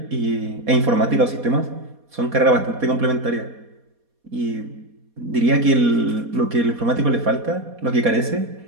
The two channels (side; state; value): left; late; 4.2 ms